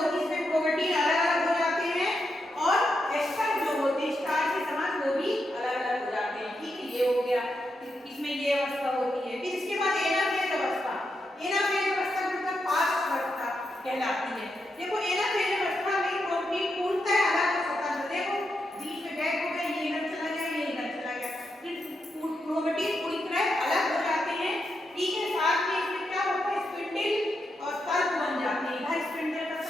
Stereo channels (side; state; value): both; normal; correlation 0.84